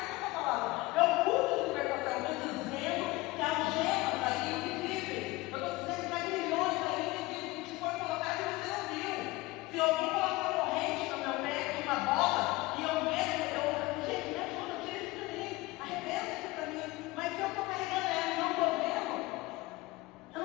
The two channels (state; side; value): quieter; right; 20.9 dB